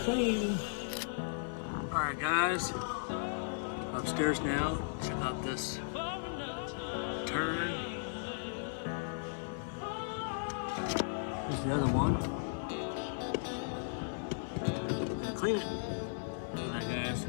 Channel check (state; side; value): silent; right; 54 dB below the other